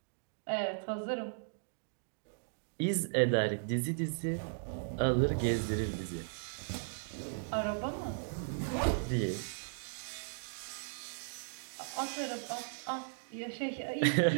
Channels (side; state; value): left; silent; digital silence